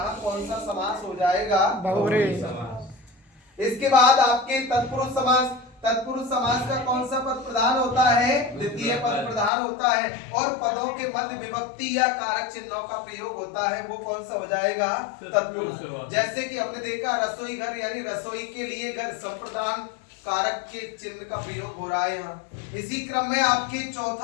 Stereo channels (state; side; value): drops out; right; at 9.5 s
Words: कौन सा समास हो जाएगा? बहुब्रीहि समास। इसके बाद आपके तत्पुरुष समास। तत्पुरुष समास का कौन सा पद प्रधान होता है? द्वितीय पद प्रधान होता है, और पदों के मध्य विभक्ति या कारक चिन्हों का प्रयोग होता है, वो कौन सा हो जाएगा? तत्पुरुष। जैसे कि हमने देखा रसोई घर, यानी रसोई के लिए घर, संप्रदान कारक के चिन्ह का प्रयोग हो रहा है यहाँ। इसी क्रम में आपके